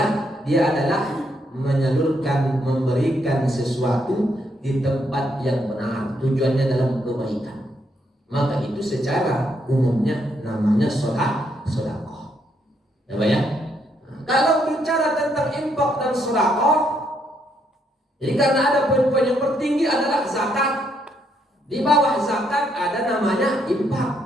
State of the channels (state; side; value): normal; both; correlation 0.75